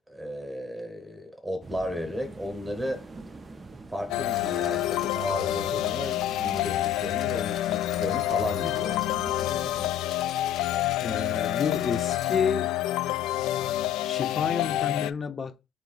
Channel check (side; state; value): right; quieter; 8.7 dB